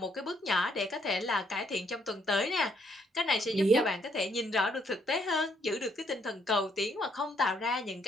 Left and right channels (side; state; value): both; normal; correlation 0.70